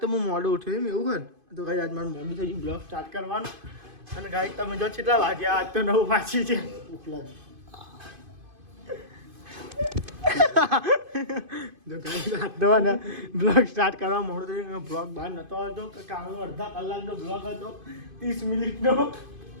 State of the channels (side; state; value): left; late; 2.5 ms